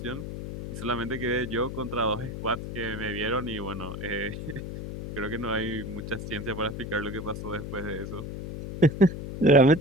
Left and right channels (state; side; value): noise; left; hum, 7 dB below the sound